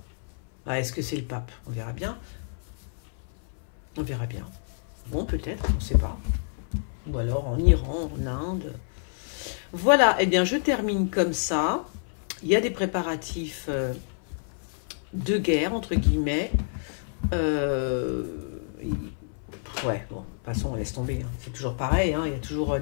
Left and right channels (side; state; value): right; silent; 58 dB below the other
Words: Ah, est-ce que c'est le pape? On verra bien. On verra bien. Bon, peut-être, on ne sait pas. Ou alors en Iran, en Inde. Voilà, eh bien je termine comme ça. il y a des préparatifs de guerre, entre guillemets. Ouais, bon, de toute façon, on laisse tomber. Hein. C'est toujours pareil, hein. Il y a toujours